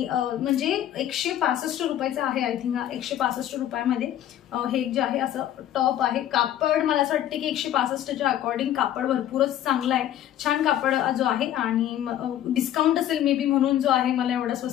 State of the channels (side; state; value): right; quieter; 11.6 dB